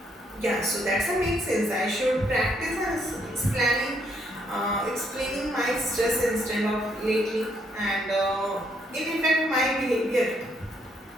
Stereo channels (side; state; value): both; normal; correlation 0.72